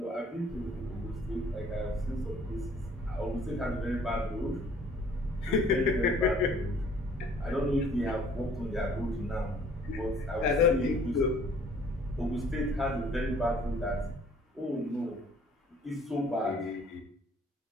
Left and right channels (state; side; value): normal; both; correlation 0.57